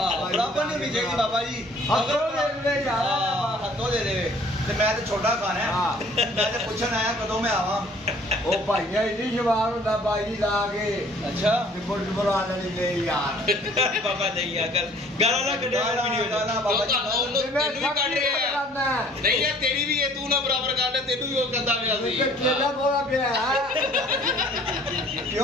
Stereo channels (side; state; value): both; normal; correlation 0.55